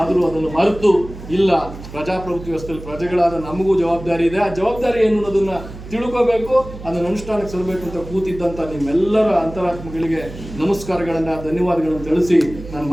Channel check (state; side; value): noise; right; hum, 14 dB below the sound